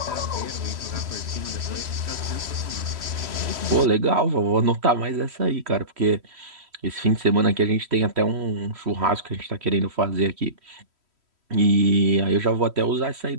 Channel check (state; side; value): late; left; 3.1 ms